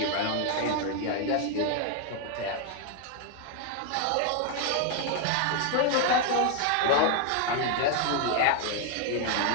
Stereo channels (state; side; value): different; both; correlation 0.01